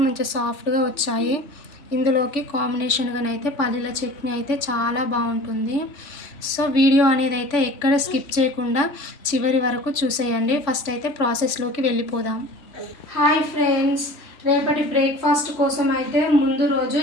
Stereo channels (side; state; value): right; late; 3.5 ms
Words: మంచిగా సాఫ్ట్గా వచ్చాయి. ఇందులోకి కాంబినేషన్గానైతే పల్లీల చట్నీ అయితే చాలా బాగుంటుంది. సో వీడియో అనేది అయితే ఎక్కడ స్కిప్ చేయకుండా చివరి వరకు చూసేయండి. ఫస్ట్ అయితే ప్రాసెస్లోకి వెళ్ళిపోదాం. హాయ్ ఫ్రెండ్స్, రేపటి బ్రేక్ఫాస్ట్ కోసం అయితే ముందు రోజు